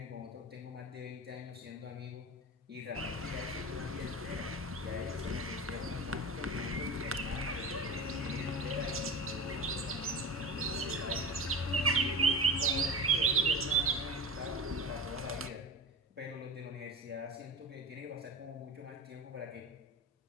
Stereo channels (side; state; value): both; normal; correlation 0.31